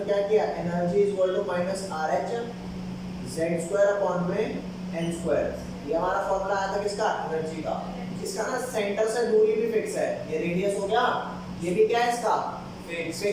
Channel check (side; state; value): both; identical; correlation 1.00